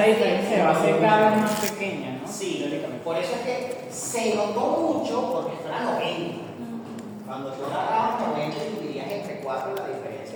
diferencia va a ser cada vez más pequeña, ¿no? Sí, Teóricamente. por eso es que se notó mucho porque esto era 90. Cuando tú agarrabas 90 y dividirías entre 4, la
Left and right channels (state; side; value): identical; both; correlation 1.00